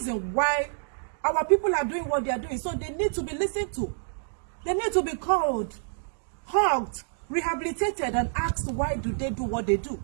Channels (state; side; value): silent; left; digital silence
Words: why our people are doing what they are doing. So they need to be listened to. They need to be called, hugged, rehabilitated, and asked why do they do what they do.